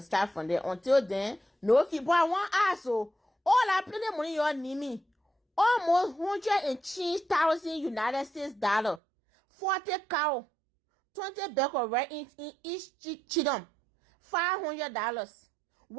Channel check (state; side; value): drops out; left; at 9.0 s